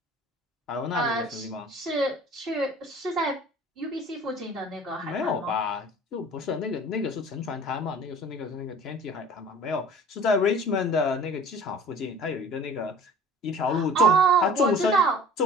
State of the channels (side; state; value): both; normal; correlation 0.45